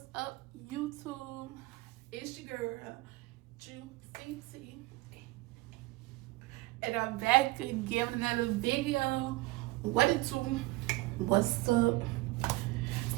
up, YouTube? It's your girl, Juicy, and I'm back again with another video. What it do? What's up?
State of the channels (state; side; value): quieter; left; 21.1 dB